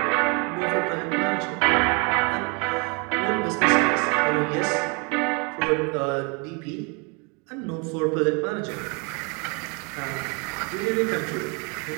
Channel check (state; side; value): quieter; left; 32.0 dB